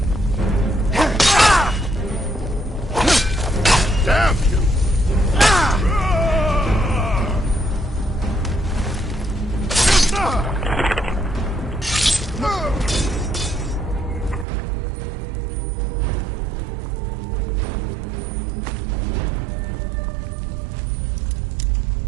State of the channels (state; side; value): drops out; left; at 14.5 s